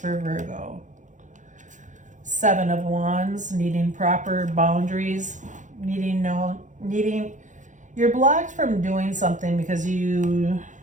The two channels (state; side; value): late; left; 0.36 ms